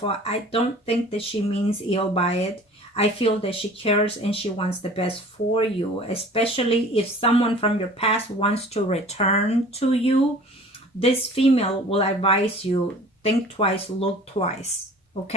I don't think that she means ill by it. I feel that she cares and she wants the best for you, especially if someone from your past wants to return to you. This female will advise you, think twice, look twice,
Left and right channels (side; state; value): both; normal; correlation 0.45